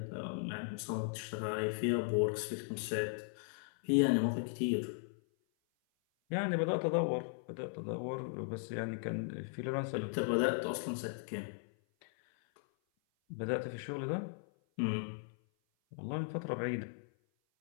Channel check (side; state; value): right; silent; 53 dB below the other